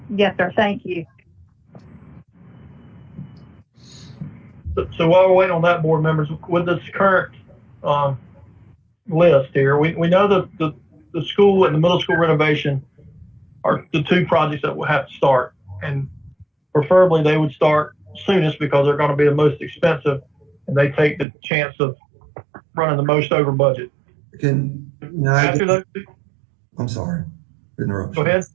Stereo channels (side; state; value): left; drops out; at 21.2 s